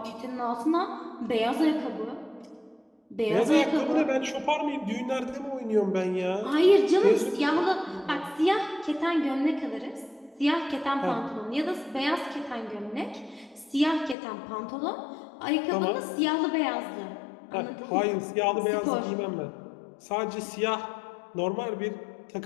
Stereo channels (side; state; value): right; drops out; at 14.2 s